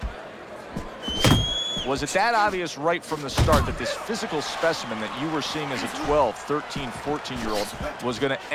Was it that obvious right from the start that this physical specimen that you were seeing as a 12, 13, 14-year-old was going to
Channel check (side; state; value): both; identical; correlation 1.00